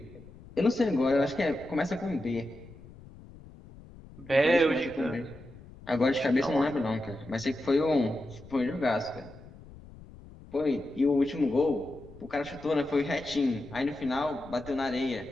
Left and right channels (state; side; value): noise; left; rumble, 19 dB below the sound